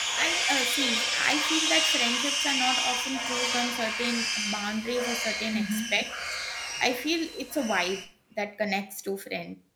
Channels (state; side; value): identical; both; correlation 1.00